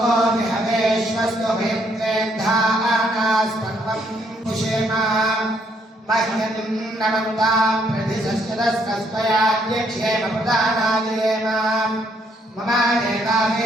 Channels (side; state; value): both; normal; correlation 0.70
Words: विहवेश्वस्तु भेद्धानास्पन्वं पुषेम मह्यं नमन्तां प्रतिशस्यदस्कस्त्वयाज्ञक्षेमप्रदानादेम मम